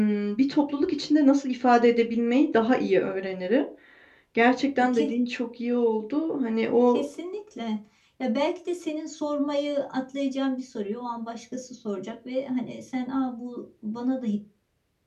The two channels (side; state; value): both; identical; correlation 1.00